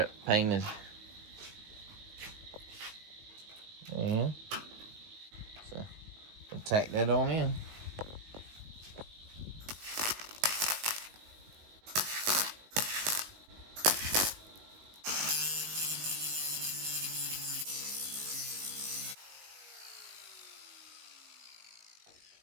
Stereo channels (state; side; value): late; left; 19 ms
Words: painted. And so we'll tack that on in.